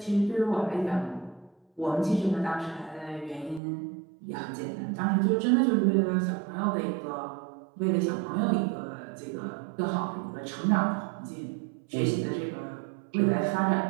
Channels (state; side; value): drops out; left; at 3.6 s